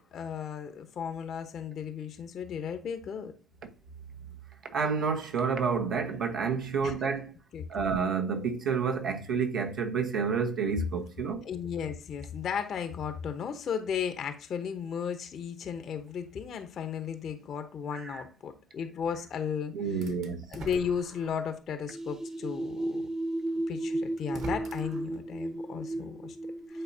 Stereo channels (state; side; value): normal; both; correlation 0.53